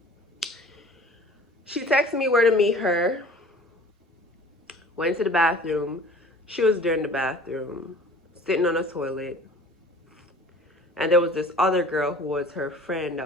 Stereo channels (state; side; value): normal; both; correlation 0.46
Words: She texted me where to meet her, went to the bathroom. She was there in the bathroom, sitting on a toilet. And there was this other girl who was her friend